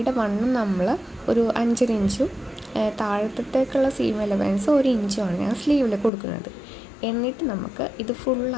വണ്ണം നമ്മൾ ഒരു 5 ഇഞ്ചും താഴത്തേക്കുള്ള സീം അലവൻസ് 1 ഇഞ്ചുമാണ് ഞാൻ സ്ലീവിൽ കൊടുക്കുന്നത്. എന്നിട്ട് നമുക്ക് ഇത്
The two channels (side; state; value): right; drops out; at 6.1 s